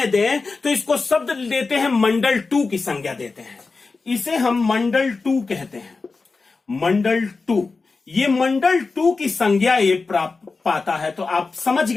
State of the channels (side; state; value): right; quieter; 4.1 dB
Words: दें तो इसको शब्द देते हैं मंडल 2 की संज्ञा देते हैं। इसे हम मंडल 2 कहते हैं, मंडल 2। ये मंडल 2 की संज्ञा ये प्राप्त पाता है। तो आप समझ